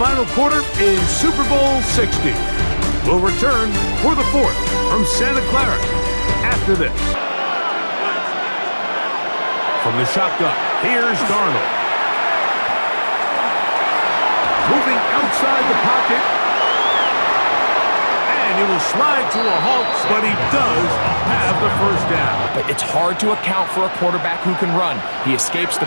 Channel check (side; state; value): both; inverted; correlation -1.00